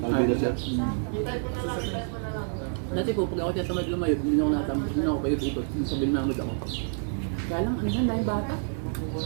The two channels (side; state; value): left; silent; 55 dB below the other